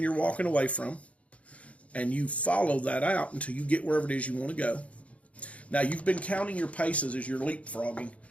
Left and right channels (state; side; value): late; right; 0.065 ms